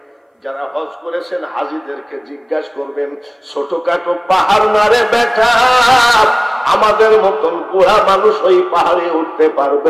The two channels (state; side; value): identical; both; correlation 1.00